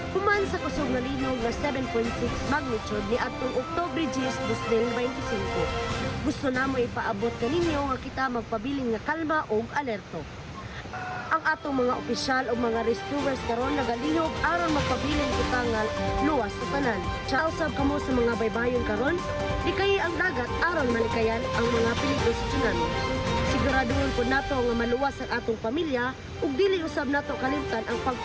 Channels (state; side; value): identical; both; correlation 1.00